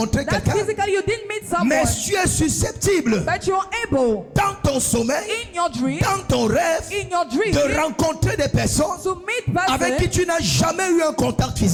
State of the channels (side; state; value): both; identical; correlation 1.00